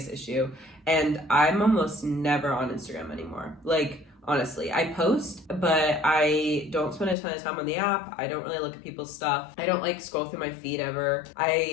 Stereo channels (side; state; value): right; drops out; at 7.2 s